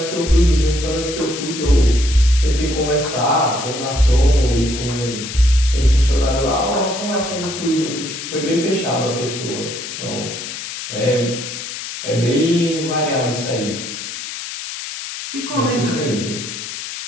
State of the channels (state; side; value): noise; left; hiss, 8 dB below the sound